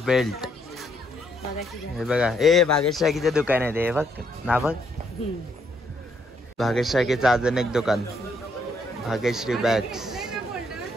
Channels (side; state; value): both; normal; correlation 0.72